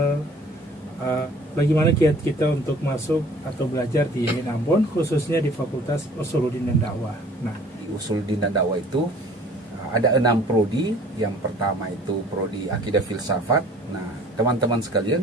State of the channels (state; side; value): normal; both; correlation 0.51